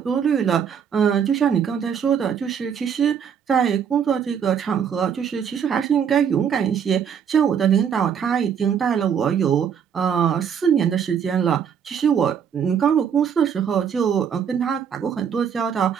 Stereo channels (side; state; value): left; quieter; 7.7 dB